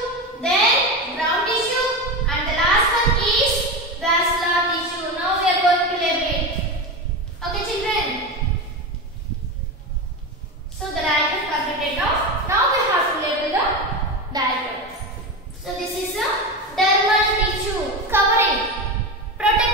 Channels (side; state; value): both; normal; correlation 0.21